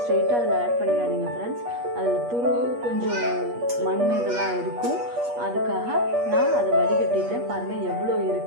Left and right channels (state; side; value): late; left; 8.4 ms